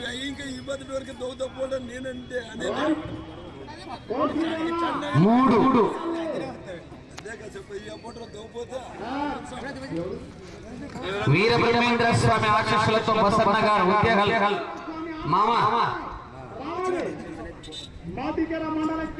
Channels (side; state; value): both; identical; correlation 1.00